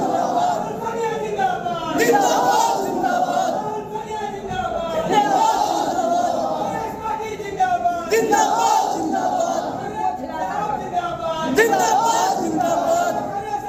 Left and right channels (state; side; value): identical; both; correlation 1.00